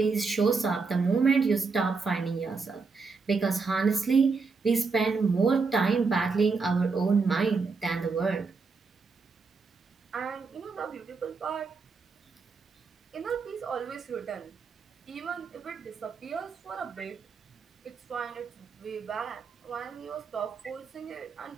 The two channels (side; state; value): left; quieter; 4.6 dB